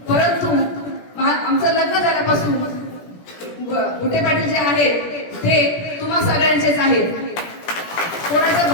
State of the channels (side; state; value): right; late; 17 ms